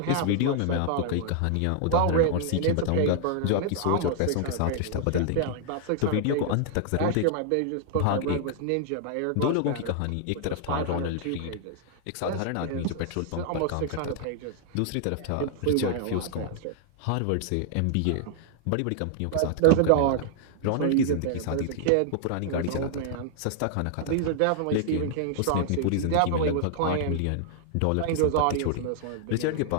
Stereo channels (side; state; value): both; different; correlation 0.00